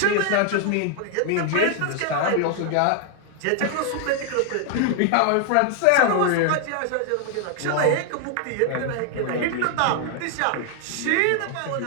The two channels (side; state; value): both; different; correlation 0.00